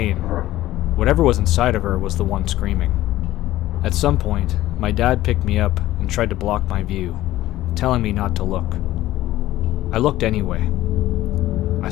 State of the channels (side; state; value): right; quieter; 15.2 dB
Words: Whatever was inside of her was the one screaming. At some point, my dad picked me up and tried to block my view, telling me not to look. I looked anyway. I